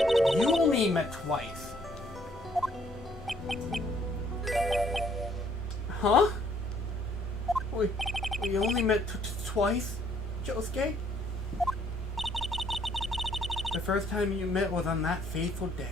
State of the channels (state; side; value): normal; both; correlation 0.65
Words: you only met twice. Huh? We only met twice, Josuke? The first time you met was on that fateful day.